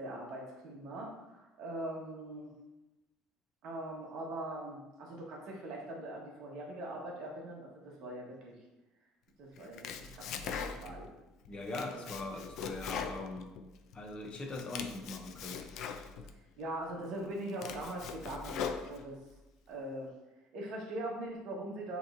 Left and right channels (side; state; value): both; normal; correlation 0.48